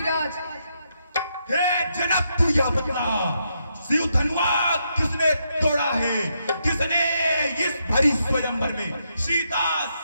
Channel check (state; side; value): inverted; both; correlation -0.80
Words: हे जनक, तू यह बता, शिव धनुआ किसने तोड़ा है, किसने इस भरी स्वयंवर में सीता